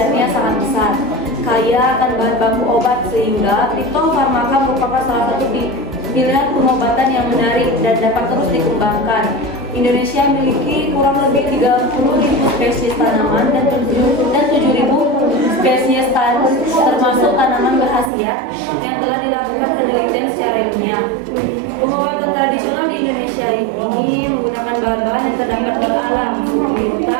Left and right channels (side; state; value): left; drops out; at 18.1 s